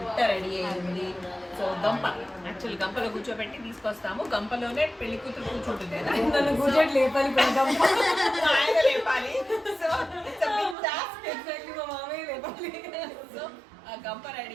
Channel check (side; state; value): left; drops out; at 10.8 s